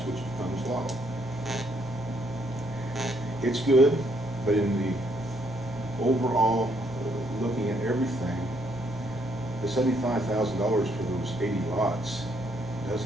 which becomes law. It's good, but in the overall, looking at everything, the $75,000 for those 80 lots does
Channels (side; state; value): both; normal; correlation 0.71